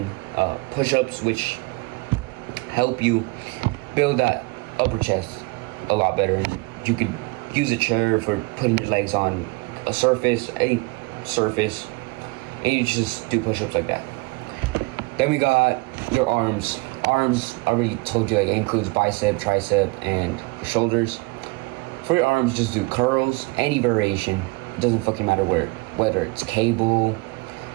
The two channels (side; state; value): left; quieter; 25.4 dB